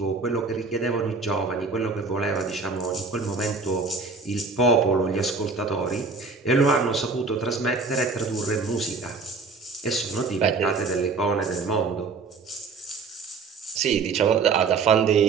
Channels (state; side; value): quieter; left; 4.4 dB